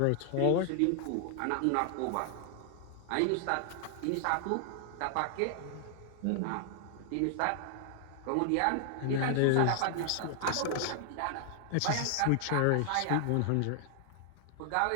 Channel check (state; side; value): different; both; correlation 0.00